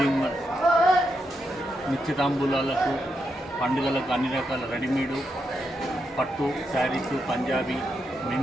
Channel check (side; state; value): both; normal; correlation 0.83